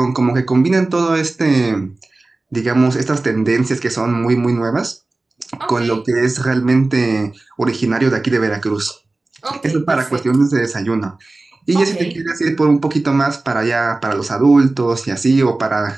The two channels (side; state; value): left; quieter; 3.1 dB